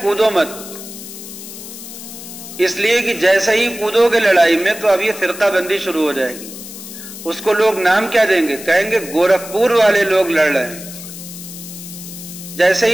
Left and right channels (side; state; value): left; noise; hiss, 13 dB below the sound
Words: کودو مت، اس لیے کہ جیسے ہی کودو گے لڑائی میں تو اب یہ فرقہ بندی شروع ہو جائے گی. اس کو لوگ نام کیا دیں گے؟ کہیں گے گورکھپور والے لوگ لڑ رہے ہیں. جیسے